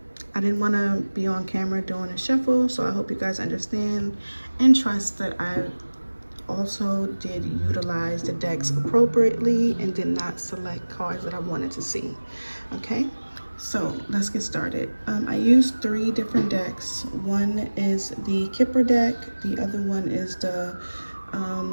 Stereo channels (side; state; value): both; inverted; correlation -1.00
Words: I didn't want to be on camera doing a shuffle, so I hope you guys understand and trust that I also did utilize the decks appropriately and did not select cards that I wanted to see. Okay, so let's get started. I used three different decks. One is the Kipper deck, the other one is